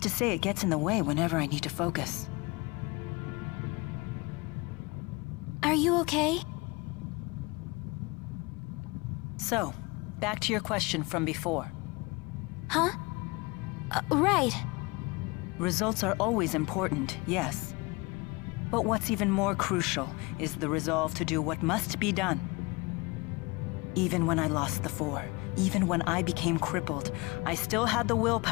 to say it gets in the way whenever I need to focus. Are you okay? So, back to your question from before. Huh? Right. Results are always important, yes. But what's even more crucial is the resolve to do what must be done. Even when I lost the Four, even when I became crippled, I still had the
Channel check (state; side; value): quieter; right; 25.7 dB